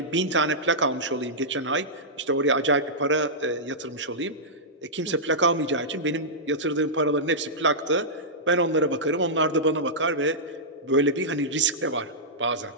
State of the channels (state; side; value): normal; both; correlation -0.13